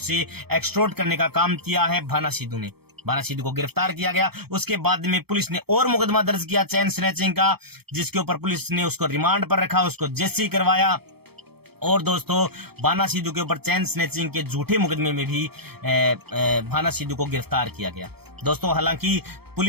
एक्सटॉर्ट करने का काम किया है भाना सिद्धू ने। भाना सिद्धू को गिरफ्तार किया गया। उसके बाद में पुलिस ने और मुकदमा दर्ज किया चैन स्नैचिंग का, जिसके ऊपर पुलिस ने उसको रिमांड पर रखा, उसको जेसी करवाया। और दोस्तों, भाना सिद्धू के ऊपर चैन स्नैचिंग के झूठे मुकदमे में भी भाना सिद्धू को गिरफ्तार किया गया। दोस्तों, हालांकि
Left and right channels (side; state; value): left; late; 0.96 ms